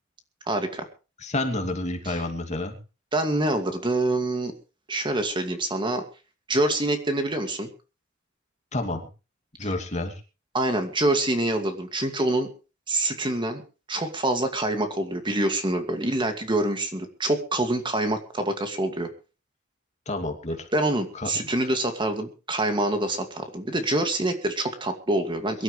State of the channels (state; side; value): normal; both; correlation 0.45